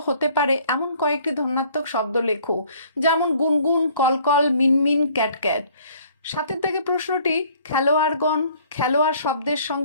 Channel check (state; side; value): inverted; both; correlation -0.57